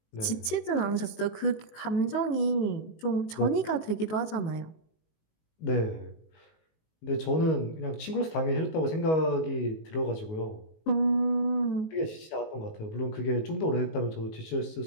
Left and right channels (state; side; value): late; right; 19 ms